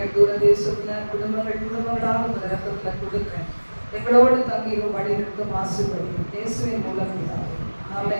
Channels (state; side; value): inverted; both; correlation -1.00